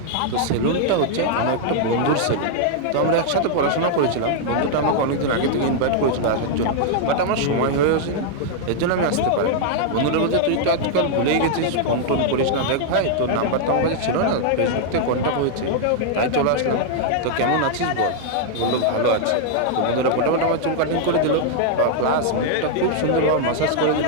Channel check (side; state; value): both; different; correlation -0.01